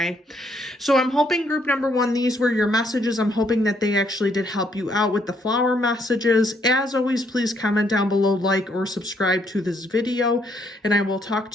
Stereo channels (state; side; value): normal; both; correlation 0.71